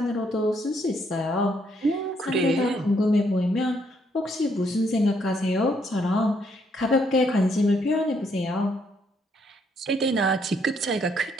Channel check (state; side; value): normal; both; correlation 0.72